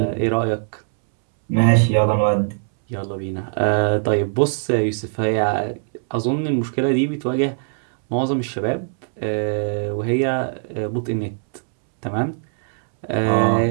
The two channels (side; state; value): left; silent; 65 dB below the other